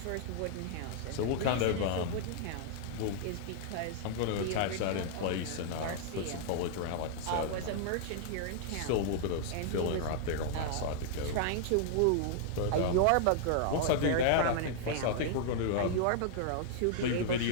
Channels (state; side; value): different; both; correlation -0.01